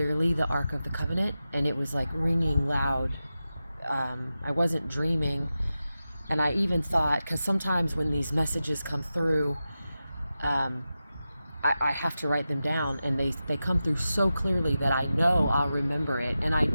the Ark of the Covenant, and it was like ringing loud. I wasn't dreaming, and I even thought, because sometimes when these messages come through, um, I have to write them down, and they come through so clearly that I know I'll remember it. And I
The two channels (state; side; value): inverted; both; correlation -0.92